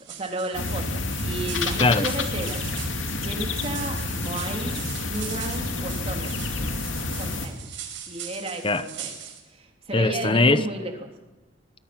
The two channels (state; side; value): normal; both; correlation 0.42